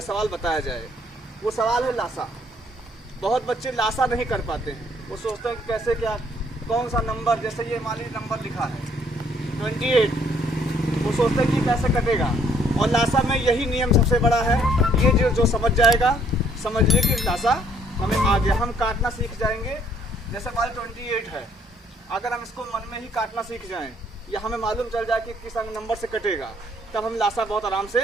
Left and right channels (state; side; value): normal; both; correlation 0.64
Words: सवाल बताया जाए, वो सवाल है लासा। बहुत बच्चे लासा नहीं कर पाते हैं। वो सोचते हैं कि कैसे, क्या, कौन सा नंबर, जैसे ये मान लीजिए नंबर लिखा है 28, वो सोचते हैं कि कैसे कटेगा। और लासा में यही नियम सबसे बड़ा है। ये जो समझ जाएगा, समझ लीजिए कि लासा हमें आ गया। हम काटना सीख जाएंगे। जैसे मान 28 है, अगर हम इसको मन में ही काटना सीख जाएं या हमें मालूम चल जाए कि किस नंबर से कटेगा, तब हम लासा बहुत आराम से